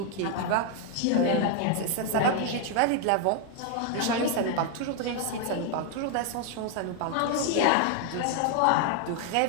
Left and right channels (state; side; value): different; both; correlation 0.00